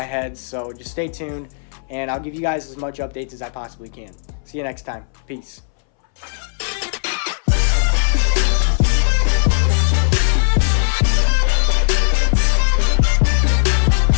head, so just stay tuned, and I'll give you guys as much updates as I possibly can. See you next time. Peace.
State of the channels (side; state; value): right; silent; 65 dB below the other